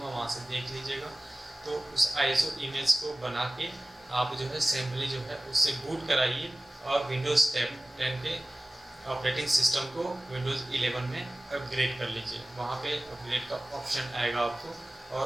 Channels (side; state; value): both; normal; correlation 0.97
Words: वहाँ से देख लीजिएगा। तो उस ISO इमेज को बना के आप जो है सिंपली जो है उससे बूट कराइए और विंडोज़ 10 के ऑपरेटिंग सिस्टम को विंडोज़ 11 में अपग्रेड कर लीजिए। वहाँ पे अपग्रेड का ऑप्शन आएगा आपको, और